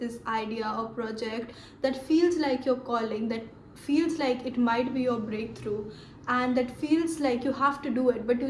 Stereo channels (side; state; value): both; identical; correlation 1.00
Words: idea or project that feels like your calling, that feels like it might be your breakthrough, and that feels like you have to do it, but you